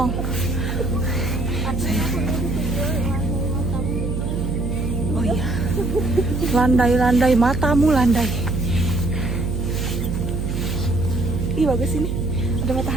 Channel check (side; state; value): right; noise; hum, 2 dB below the sound